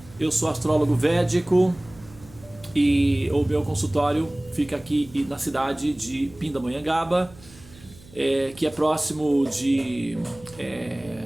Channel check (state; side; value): noise; right; hum, 22 dB below the sound